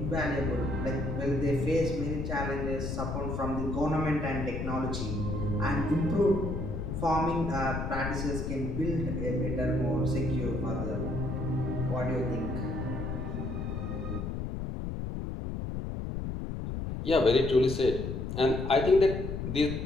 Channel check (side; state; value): left; noise; rumble, 4 dB below the sound